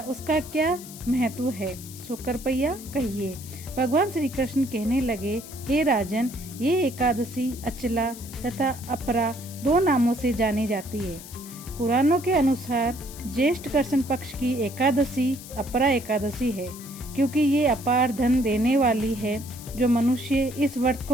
उसका क्या महत्व है, सो कृपया कहिए। भगवान श्री कृष्ण कहने लगे, हे राजन, ये एकादशी अचला तथा अपरा दो नामों से जानी जाती है। पुराणों के अनुसार ज्येष्ठ कृष्ण पक्ष की एकादशी अपरा एकादशी है, क्योंकि ये अपार धन देने वाली है। जो मनुष्य इस व्रत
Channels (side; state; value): left; noise; hiss, 15 dB below the sound